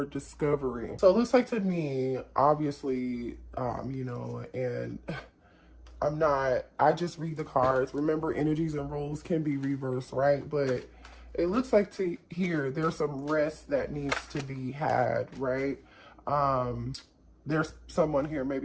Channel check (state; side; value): identical; both; correlation 1.00